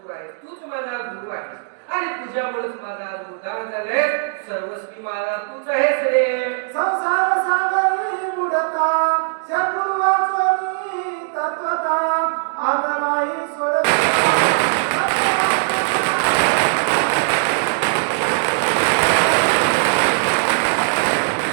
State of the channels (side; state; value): left; silent; digital silence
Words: आहे, तूच माझा गुरु आहे, आणि तुझ्यामुळेच माझा उद्धार झालाय. सर्वस्वी मला तूच आहेस रे. संसार सागरी बुडता, सद्गुरु वाचोनी तत्वता, आदमाई सोड.